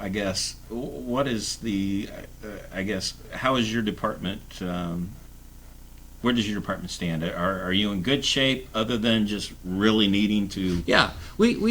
I guess, what is how is your department? Where does your department stand? Are you in good shape other than just really needing to? Yeah,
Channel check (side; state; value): both; identical; correlation 1.00